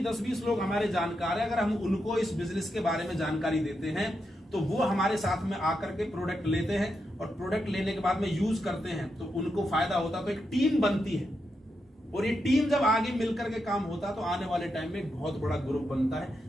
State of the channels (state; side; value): normal; both; correlation 0.85